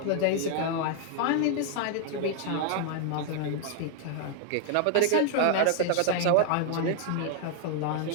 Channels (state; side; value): different; both; correlation 0.00